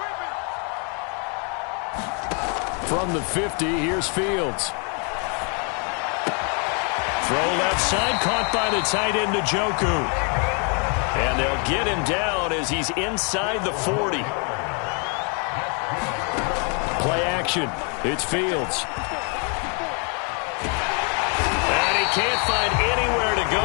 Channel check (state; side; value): quieter; right; 37.6 dB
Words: From the 50, here's Fields. Throw left side, caught by the tight end Njoku. And they'll get him down as he's inside the 40. Play action. It's Fields. And he can't find anywhere to